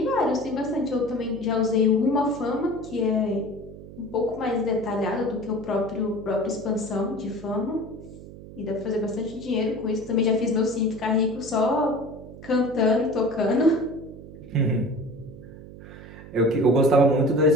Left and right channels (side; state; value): right; noise; hum, 16 dB below the sound